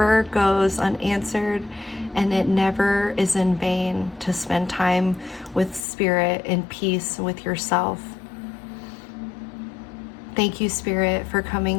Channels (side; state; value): right; drops out; at 5.9 s